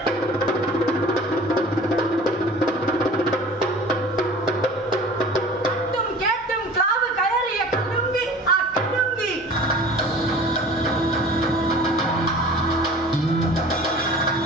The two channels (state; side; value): normal; both; correlation 0.43